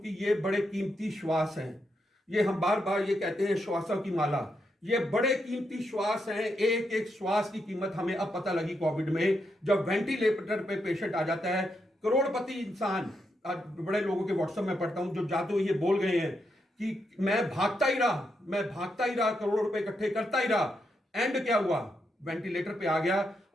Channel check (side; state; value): both; normal; correlation 0.82